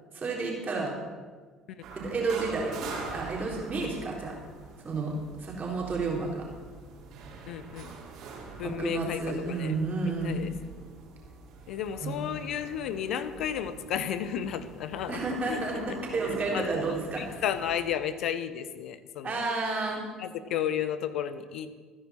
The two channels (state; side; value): normal; both; correlation 0.47